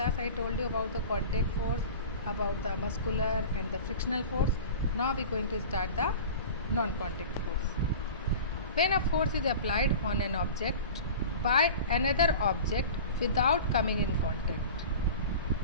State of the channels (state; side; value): inverted; both; correlation -0.36